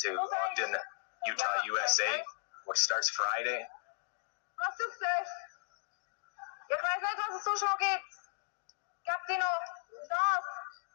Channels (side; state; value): right; silent; digital silence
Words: Ogden, Utah, USA, which starts Friday. Was ist das? Ich weiß nicht, was es so schnell geht. Gab die noch das?